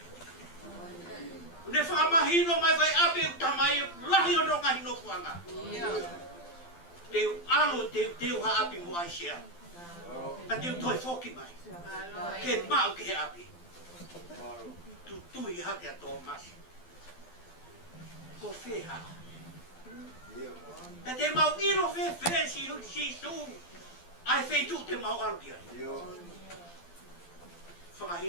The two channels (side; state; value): right; late; 12 ms